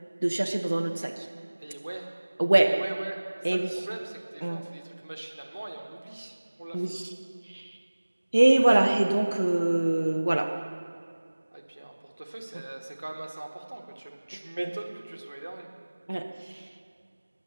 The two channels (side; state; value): both; inverted; correlation -1.00